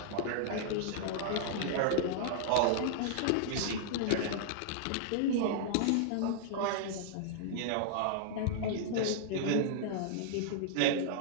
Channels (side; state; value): both; different; correlation -0.01